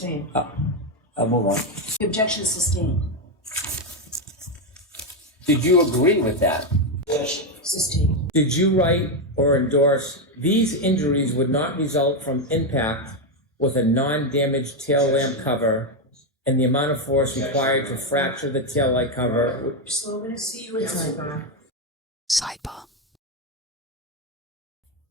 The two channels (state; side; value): normal; both; correlation 0.06